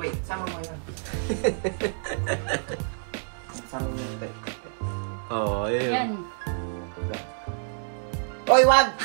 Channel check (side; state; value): left; silent; 60 dB below the other